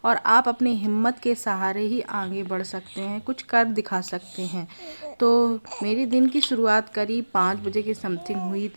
और आप अपनी हिम्मत के सहारे ही आगे बढ़ सकते हैं, कुछ कर दिखा सकते हैं। तो मेरी दिन की शुरुआत करीब 5 बजे के समथिंग हुई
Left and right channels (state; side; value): inverted; both; correlation -1.00